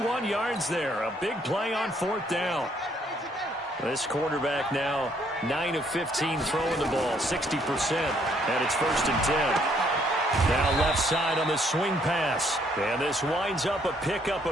yards there. A big play on 4th down. This quarterback now 9 of 15 throwing the ball, 60%, and it's 1st and 10. Now left side on the swing pass. And this winds up a pickup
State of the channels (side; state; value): both; normal; correlation 0.68